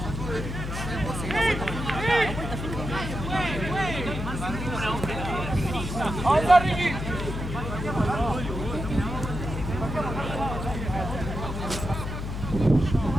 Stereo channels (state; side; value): noise; left; hum, 5 dB below the sound